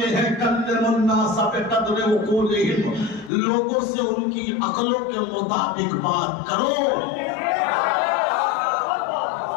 ہیں کلم الناس بقدر عقولہم, لوگوں سے ان کی عقلوں کے مطابق بات کرو.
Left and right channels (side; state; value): right; drops out; at 3.3 s